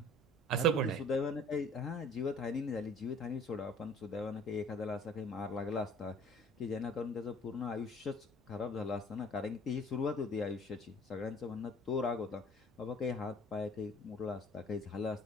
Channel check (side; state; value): both; normal; correlation 0.51